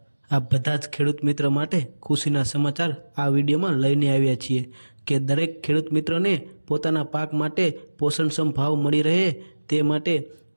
આ બધા જ ખેડૂત મિત્ર માટે ખુશીના સમાચાર આ વિડીયોમાં લઈને આવ્યા છીએ કે દરેક ખેડૂત મિત્રને પોતાના પાક માટે પોષણક્ષમ ભાવ મળી રહે તે માટે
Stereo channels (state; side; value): inverted; both; correlation -1.00